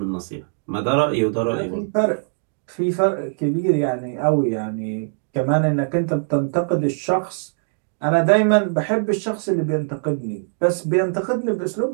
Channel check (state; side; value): silent; left; digital silence